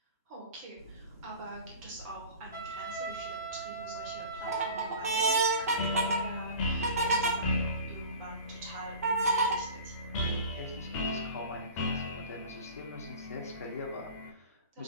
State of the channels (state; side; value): inverted; both; correlation -0.38